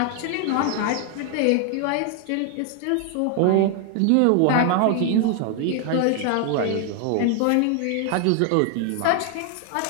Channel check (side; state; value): both; different; correlation 0.00